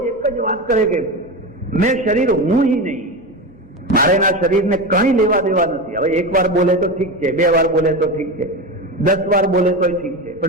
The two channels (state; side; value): normal; both; correlation 0.21